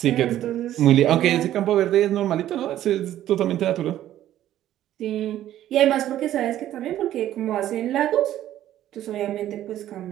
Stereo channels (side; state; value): left; quieter; 12.6 dB